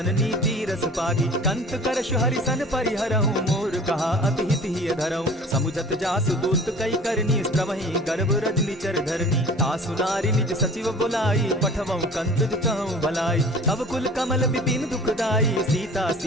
नीति रस पागी। कंत करशु हरिसन परिहरहु, मोर कहा अति हित ही धरहु। समुझत जासु दूत कई करनी, स्त्रवहि गर्भ रजनी चर धरनी। तासु नारी निज सचिव बुलाई, पठवऊ कंत कहूँ भलाई। तब कुल कमल विपिन दुखदाई, सीता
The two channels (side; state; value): both; normal; correlation 0.44